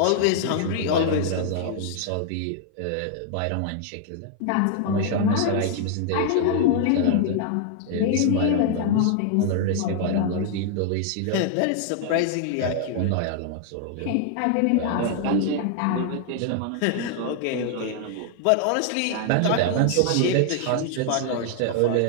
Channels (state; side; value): different; both; correlation 0.00